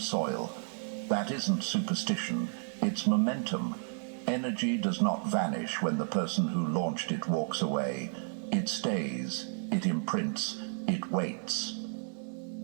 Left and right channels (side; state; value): left; silent; 56 dB below the other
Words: That isn't superstition, it's momentum. Energy does not vanish when the person who launched it walks away. It stays, it imprints, it waits.